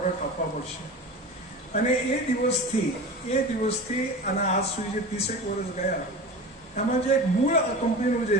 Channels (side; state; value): both; normal; correlation 0.32